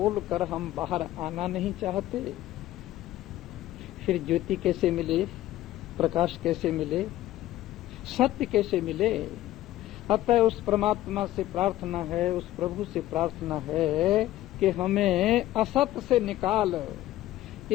हम बाहर आना नहीं चाहते, फिर ज्योति कैसे मिले, प्रकाश कैसे मिले, सत्य कैसे मिले? अतः उस परमात्मा से प्रार्थना है, उस प्रभु से प्रार्थना है कि हमें असत से निकाल,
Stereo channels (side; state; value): right; quieter; 14.8 dB